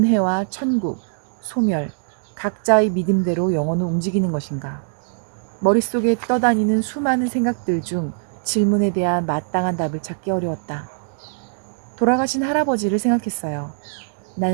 천국, 소멸, 각자의 믿음대로 영혼은 움직이는 것인가? 머릿속에 떠다니는 수많은 생각들 중 질문에 대한 마땅한 답을 찾기 어려웠다. 돌아가신 할아버지를 생각했어요.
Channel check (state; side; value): silent; left; digital silence